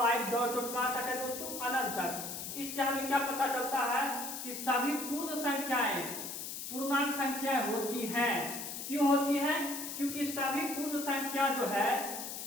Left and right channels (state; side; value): noise; left; hiss, 7 dB below the sound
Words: डॉट डॉट कहां तक है दोस्तों, अनंत तक। इससे हमें क्या पता चलता है कि सभी पूर्ण संख्याएं पूर्णांक संख्याएं होती हैं। क्यों होती हैं, क्योंकि सभी पूर्ण संख्या जो है